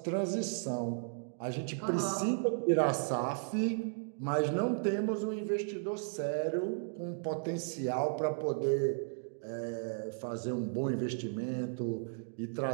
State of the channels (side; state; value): left; silent; digital silence